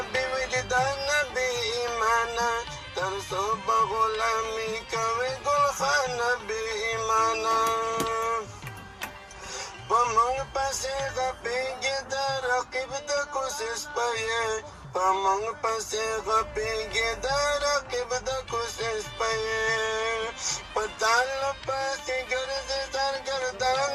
بې وجدانه بې ایمانه تر څو به غلامي کوي ګلخانه بې ایمانه په موږ پسې غپېږي د رقیب د کوشش پيې په موږ پسې غپېږي د رقیب د کوشش پيې په تال پسې ګرځي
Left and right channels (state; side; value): identical; both; correlation 1.00